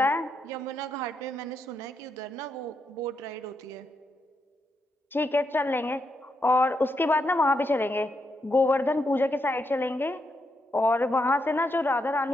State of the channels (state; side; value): normal; both; correlation 0.81